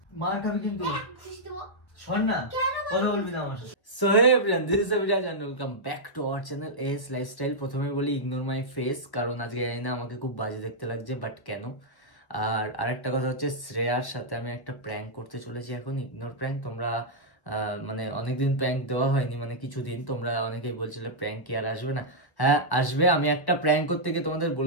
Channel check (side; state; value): right; late; 1.2 ms